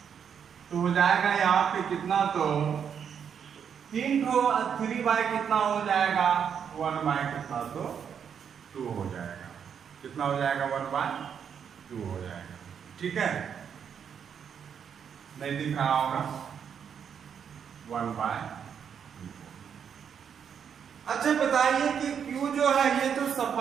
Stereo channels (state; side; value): quieter; left; 7.6 dB